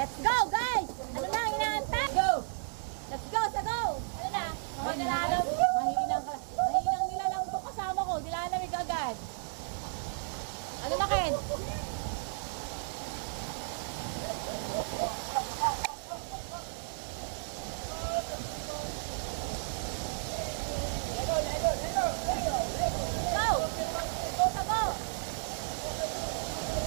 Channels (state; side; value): silent; left; digital silence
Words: go guys! Ano na ang inaantay? Go! Let's go! Ano na? Mahinang nilalang ito kasama ko. Nilalamig agad. Ano na, Ken?